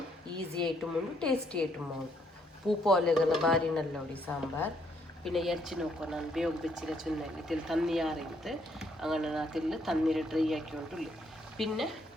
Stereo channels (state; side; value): normal; both; correlation 0.71